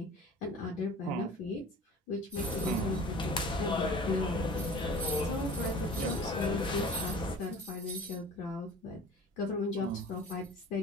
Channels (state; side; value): normal; both; correlation 0.43